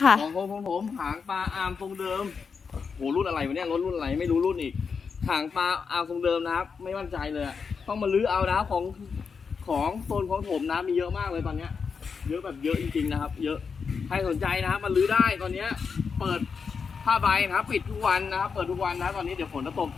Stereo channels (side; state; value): right; quieter; 5.7 dB